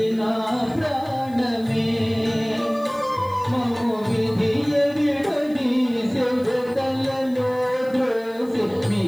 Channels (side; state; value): left; noise; hiss, 27 dB below the sound